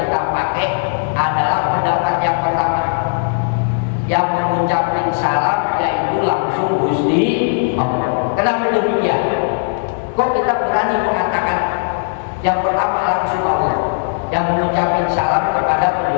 pakai adalah pendapat yang pertama. Yang mengucapkan salam yaitu langsung Gusti Allah. Kenapa demikian? Kok kita berani mengatakan yang pertama langsung Allah, yang mengucapkan salam kepada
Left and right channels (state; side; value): silent; right; digital silence